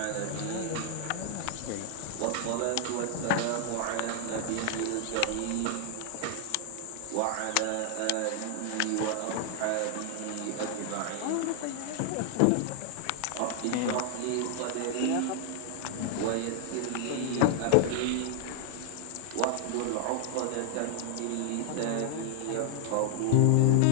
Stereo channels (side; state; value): both; different; correlation 0.00